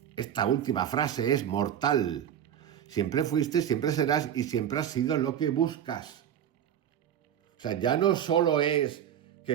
Esta última frase es mortal. Siempre fuiste, siempre serás y siempre has sido lo que buscas. O sea, ya no solo es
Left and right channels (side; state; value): left; quieter; 9.7 dB